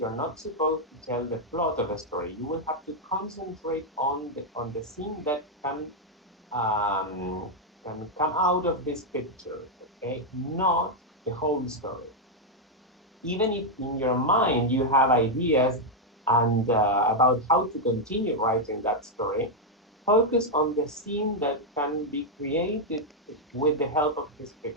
not supposed to tell the plot of a story. You will have to concentrate on the scene that can come out of this picture, okay, not the whole story. Even if in your mind you have ideas and about how to continue writing that story, focus on the scene that can be created with the help of this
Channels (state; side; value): normal; both; correlation 0.00